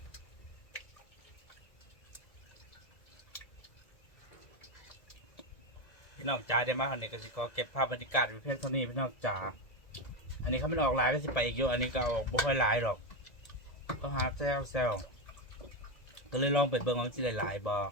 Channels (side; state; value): right; late; 1.7 ms